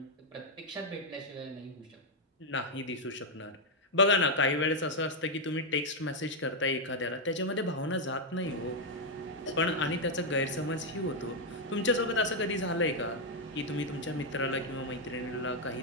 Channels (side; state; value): both; normal; correlation 0.01